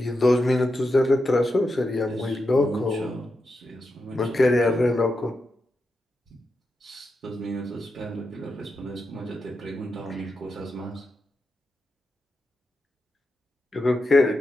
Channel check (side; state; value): both; normal; correlation 0.87